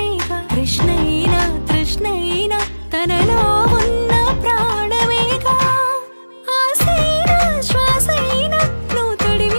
కృష్ణైనా తృష్ణైనా తనలో ఉన్న ప్రాణమేగా ఆసైనా శ్వాసైనా నువ్వు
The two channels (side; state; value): both; inverted; correlation -1.00